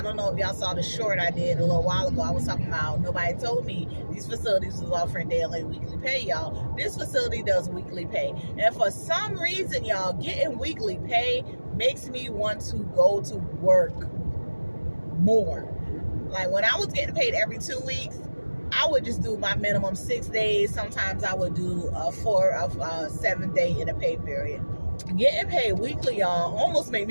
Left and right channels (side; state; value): both; inverted; correlation -1.00